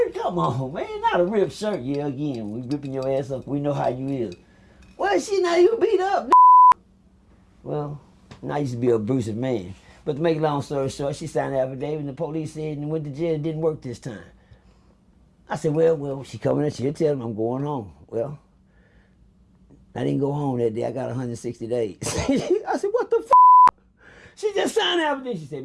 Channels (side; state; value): both; identical; correlation 1.00